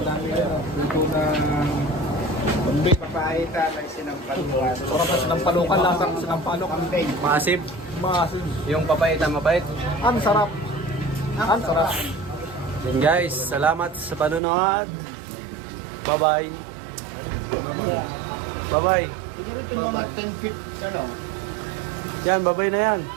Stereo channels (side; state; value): left; drops out; at 14.4 s